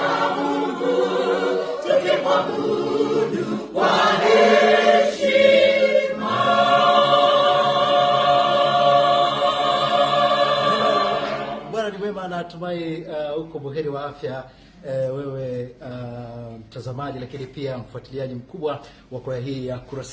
Mungu, tukimwabudu kwa heshima. Bwana ni mwema, natumai uko buheri wa afya, wewe mtazamaji, lakini pia mfuatiliaji mkubwa wa kwaya hii ya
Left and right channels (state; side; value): identical; both; correlation 1.00